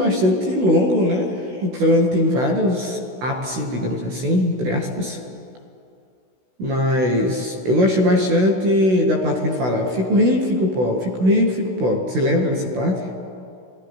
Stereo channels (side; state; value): left; late; 16 ms